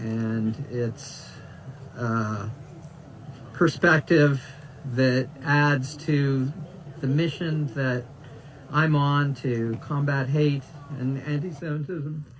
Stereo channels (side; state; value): both; identical; correlation 1.00